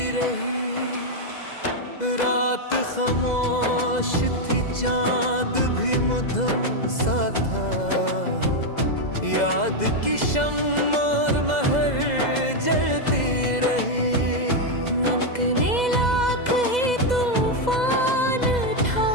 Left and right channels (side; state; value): right; late; 2.0 ms